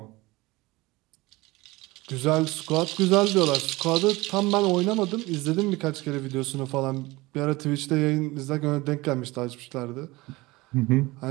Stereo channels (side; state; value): left; quieter; 21.2 dB